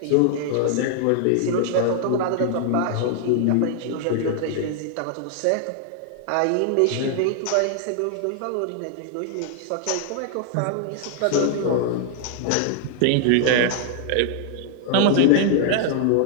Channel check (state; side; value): different; both; correlation 0.00